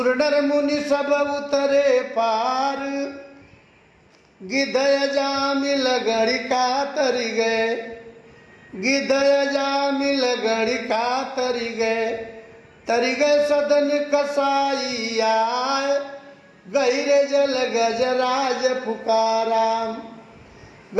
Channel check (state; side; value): identical; both; correlation 1.00